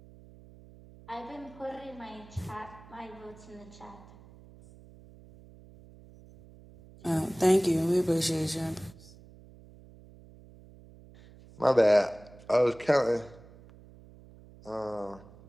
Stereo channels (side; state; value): right; noise; hum, 22 dB below the sound